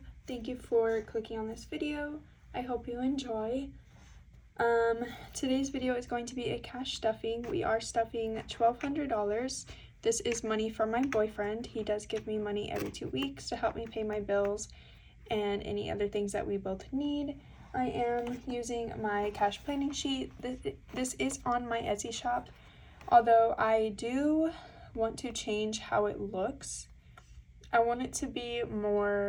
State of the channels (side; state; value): both; identical; correlation 1.00